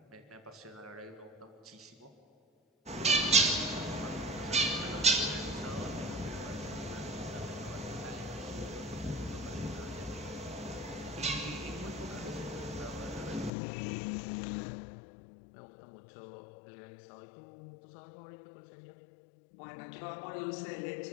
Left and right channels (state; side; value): drops out; right; at 13.5 s